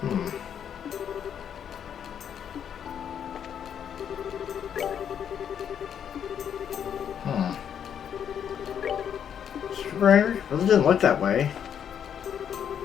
Super angry? Really didn't look that way.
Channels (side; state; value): right; quieter; 8.6 dB